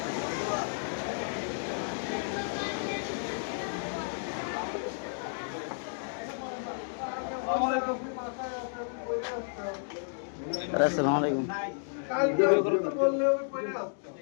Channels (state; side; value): silent; right; digital silence